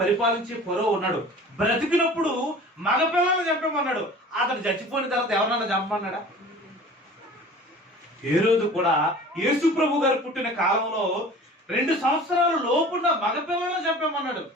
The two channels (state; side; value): normal; both; correlation 0.42